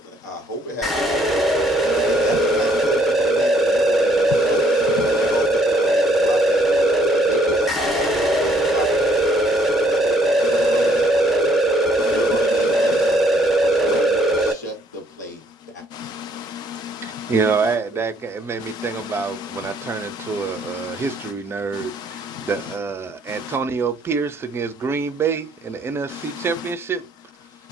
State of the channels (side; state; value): both; normal; correlation 0.65